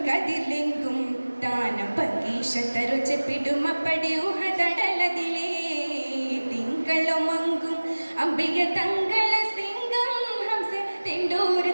താനം പങ്കീഷത്തരുചെപ്പിടുമപ്പടി ഉഹദടലതിലേ തിങ്കളുമങ്കും അംബിക തങ്കള സിംഗം ഹംസ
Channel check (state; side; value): inverted; both; correlation -1.00